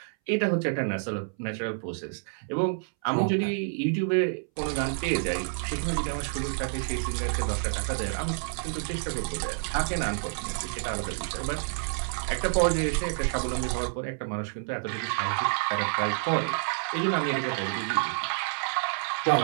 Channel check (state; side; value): silent; left; 59 dB below the other